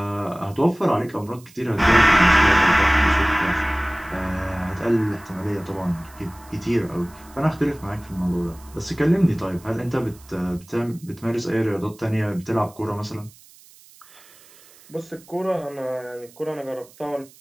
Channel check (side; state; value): right; noise; hiss, 25 dB below the sound